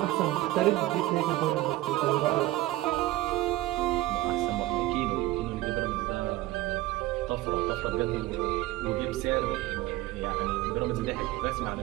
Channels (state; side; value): quieter; left; 16.8 dB